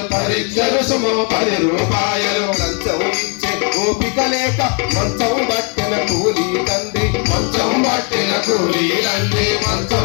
లంచం ఇచ్చే ఓపిక లేక మంచం పట్టిన కూలీ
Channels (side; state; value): right; quieter; 35.9 dB